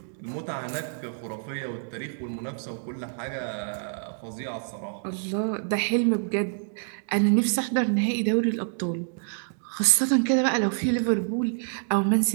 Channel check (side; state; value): left; silent; digital silence